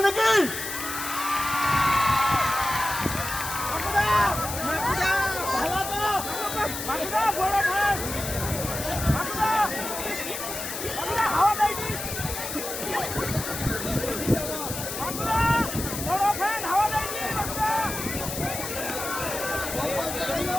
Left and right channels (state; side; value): noise; left; hiss, 6 dB below the sound